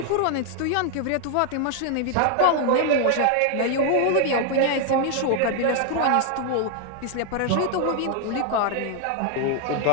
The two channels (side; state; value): both; different; correlation 0.00